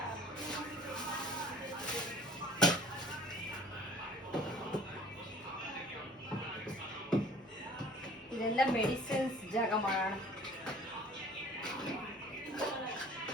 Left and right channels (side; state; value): both; normal; correlation 0.51